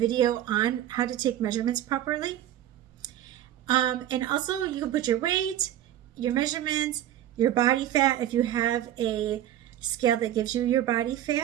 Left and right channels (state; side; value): quieter; left; 12.1 dB